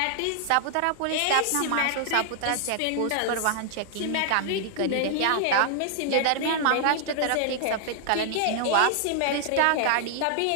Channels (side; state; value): both; different; correlation -0.01